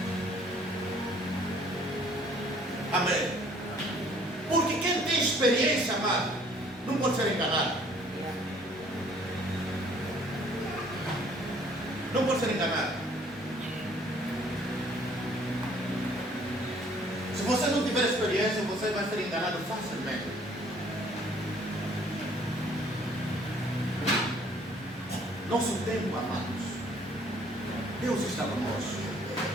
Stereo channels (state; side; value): normal; both; correlation 0.59